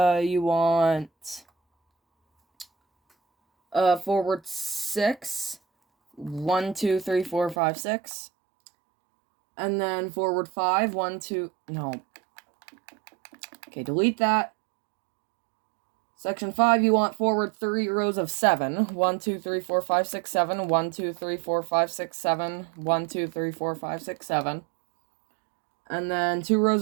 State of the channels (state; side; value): drops out; left; at 7.6 s